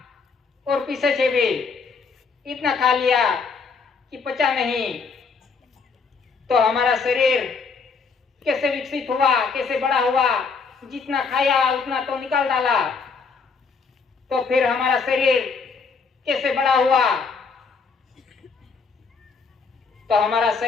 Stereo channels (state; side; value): quieter; right; 5.0 dB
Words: और पीछे से भी इतना खा लिया कि पचा नहीं। तो हमारा शरीर कैसे विकसित हुआ, कैसे बड़ा हुआ, जितना खाया उतना तो निकाल डाला। तो फिर हमारा शरीर कैसे बड़ा हुआ, तो हमारा